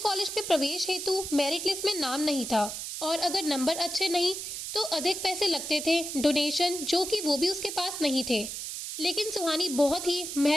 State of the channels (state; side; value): noise; right; hiss, 6 dB below the sound